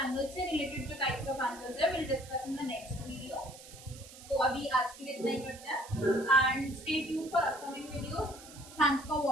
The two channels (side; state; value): right; noise; hiss, 17 dB below the sound